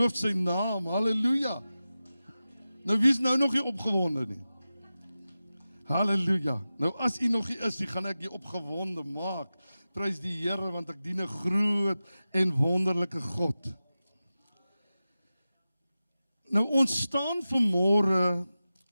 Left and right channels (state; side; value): inverted; both; correlation -0.94